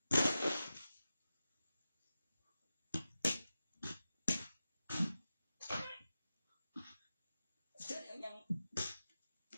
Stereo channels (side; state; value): both; inverted; correlation -0.93